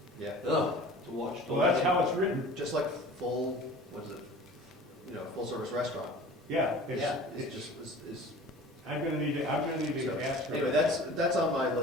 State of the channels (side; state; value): both; normal; correlation 0.42